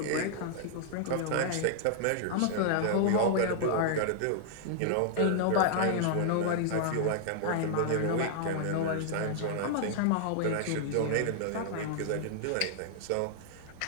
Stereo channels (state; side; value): different; both; correlation -0.01